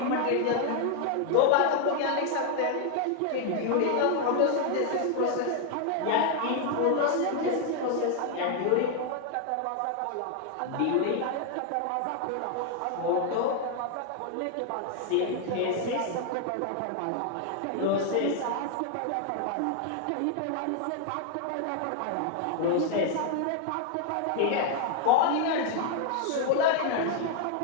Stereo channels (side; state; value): both; different; correlation 0.00